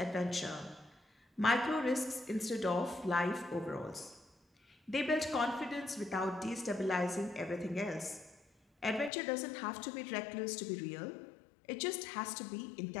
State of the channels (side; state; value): right; drops out; at 9.1 s